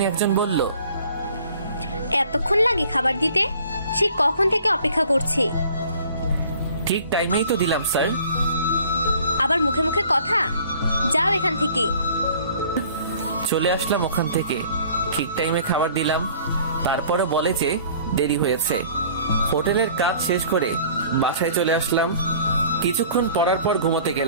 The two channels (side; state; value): both; inverted; correlation -0.52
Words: একজন বলল, এতক্ষণ লাগে খাবার দিতে? সে কখন থেকে অপেক্ষা করছি। ঠিক টাইমেই তো দিলাম স্যার। আবার মুখে মুখে কথা, যাও এখান থেকে। চলে আসলাম ওখান থেকে, ঠিক টাইমে খাবার দিলাম। তারপরে বলে যে দেরি হয়েছে। হোটেলের কাজ শেষ করে বাসায় চলে আসলাম। কিছুক্ষণ পড়ার পর ঘুমোতে